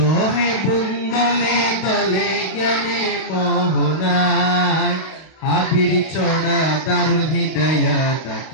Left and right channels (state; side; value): late; right; 32 ms